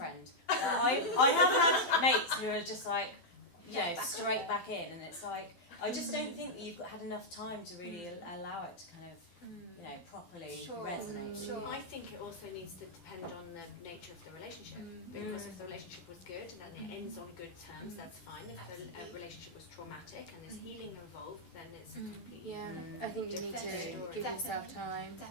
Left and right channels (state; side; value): late; right; 12 ms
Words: But I have had mates who are just like, you know, straight back in, and it's like, I just don't think that you've had enough time to really allow it to kind of, you know, properly resonate. Sure. I think it also needs to depend on the nature of the relationship. Because if the relationship was good, then it ends on good terms, that's fine. If the relationship was traumatic and there's healing involved, then it's completely I think you need to give yourself time.